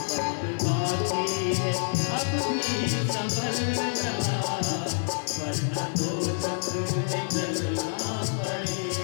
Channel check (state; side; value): silent; right; 57 dB below the other